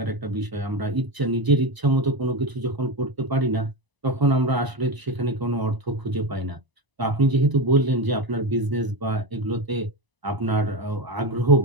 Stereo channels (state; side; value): late; left; 1.0 ms